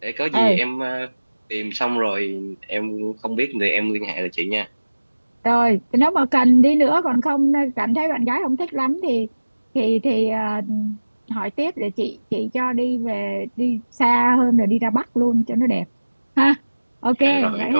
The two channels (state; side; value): inverted; both; correlation -1.00